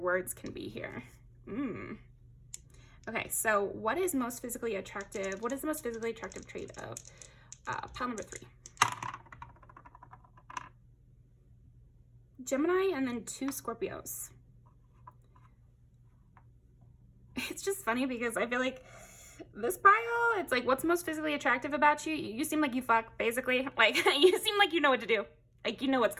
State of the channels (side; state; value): both; identical; correlation 1.00